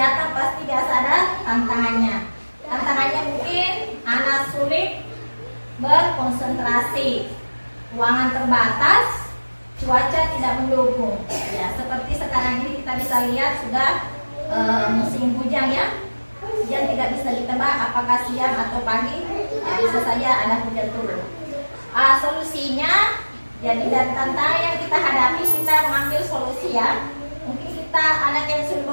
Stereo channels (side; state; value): both; inverted; correlation -1.00